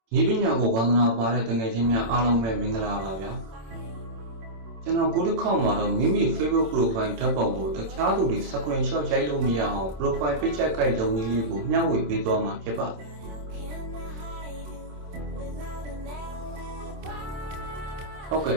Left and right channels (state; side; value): late; left; 27 ms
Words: နီးပညာကိုဝါသနာပါတဲ့တငယ်ချင်းများအားလုံးပဲမင်္ဂလာပါဗျာကျွန်တော်ကိုတစ်ခေါက်မှာတော့မိမိ Facebook profile ဓာတ်ပုံကိုတခြားသူတွေ screenshot ရိုက်လို့မရအောင် profile picture guide လုပ်နည်းလေးကိုမျှဝေပေးသွားမှာဖြစ်ပါတယ်ဟုတ်ကဲ့